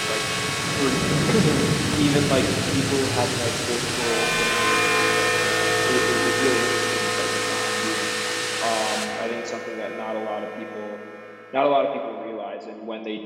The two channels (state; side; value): identical; both; correlation 1.00